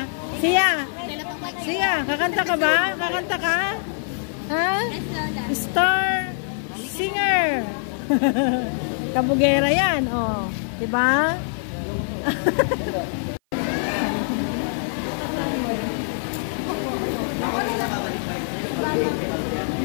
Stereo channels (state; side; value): silent; right; 55 dB below the other